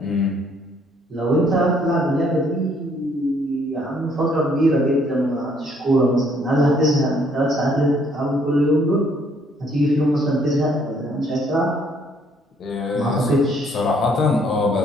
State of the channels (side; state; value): both; normal; correlation 0.65